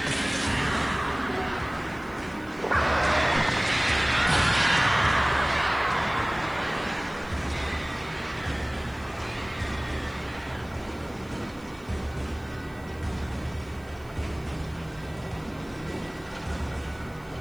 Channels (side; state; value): right; noise; hiss, 28 dB below the sound